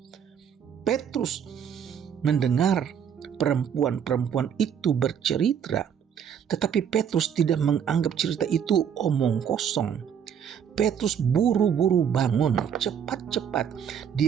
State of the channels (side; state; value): left; quieter; 8.2 dB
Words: Petrus mendengar perempuan-perempuan itu bercerita, tetapi Petrus tidak menganggap cerita itu omong kosong. Petrus buru-buru bangun, cepat-cepat